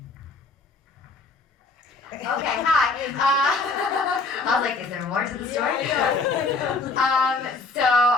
Okay, hi. I was like, is there more to the story? So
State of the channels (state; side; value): quieter; right; 3.8 dB